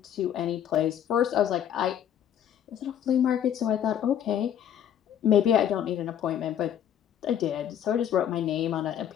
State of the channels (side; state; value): right; quieter; 9.8 dB